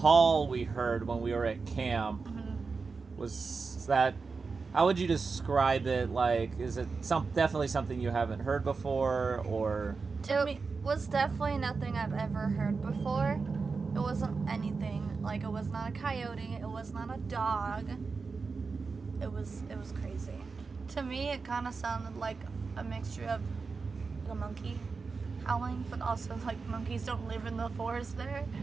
we heard when we were at camp was that, how would you describe it? Like, is it definitely something you haven't heard before, or? was definitely nothing I've ever heard before. It wasn't anything. Like, it was not a coyote. It was not a dog. It was crazy. To me, it kind of sounded like a mixture of a monkey howling, but also like monkeys don't live in the forest there.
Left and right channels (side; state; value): left; quieter; 4.6 dB